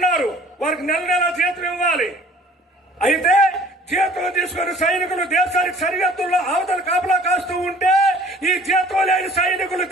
వారికి నెల నెల జీతం ఇవ్వాలి. అయితే జీతం తీసుకుని సైనికులు దేశానికి సరిహద్దుల్లో అవతల కాపలా కాస్తూ ఉంటే ఈ జీతం లేని సైనికులు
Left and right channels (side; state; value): both; normal; correlation 0.51